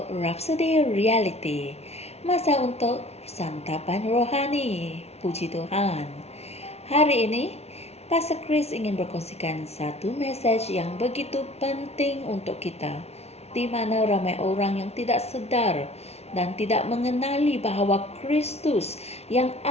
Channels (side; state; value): right; late; 0.31 ms